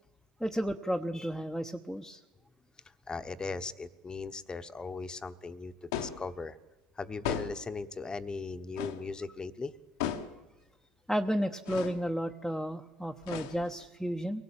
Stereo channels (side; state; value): both; normal; correlation 0.80